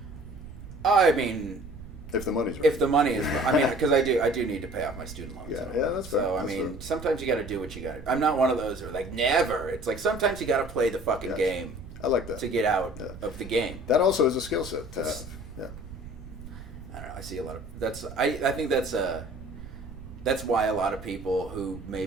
I mean, if the money's right. If the money is, I mean, because I do need to pay off my student loans. Yeah, that's fair. So I mean, sometimes you got to do what you got to. I'm not one of those who are like never. It's like sometimes you got to play the fucking game. I like that to get out of the game. That also is a skill set to have. Yeah. I don't know. I see a lot of that's. I think that's why a lot of people who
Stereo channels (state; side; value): noise; right; rumble, 14 dB below the sound